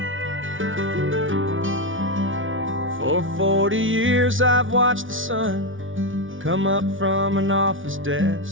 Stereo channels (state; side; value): late; left; 0.57 ms